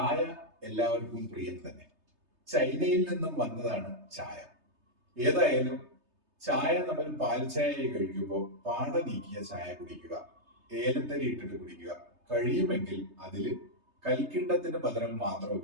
എല്ലാവർക്കും പ്രിയം തന്നെ. ചൈനയിൽ നിന്നും വന്നതാണ് ചായ. ഏതായാലും ചായ നമ്മൾ പാൽ ചായ കഴിക്കുമ്പോൾ പാട നീക്കിയ ചായ കുടിക്കുക, ഏലത്തരി ഇട്ടിട്ട് കുടിക്കുക. കഴിയുമെങ്കിൽ അതിൽ കൽക്കിണ്ടത്തിന് പകരം മാത്രം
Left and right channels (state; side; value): late; left; 3.3 ms